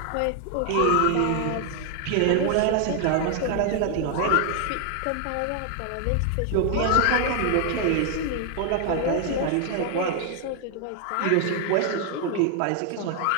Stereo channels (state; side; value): different; both; correlation 0.00